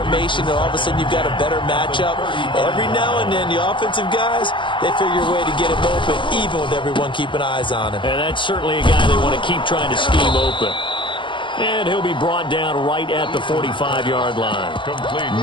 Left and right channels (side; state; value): right; late; 0.24 ms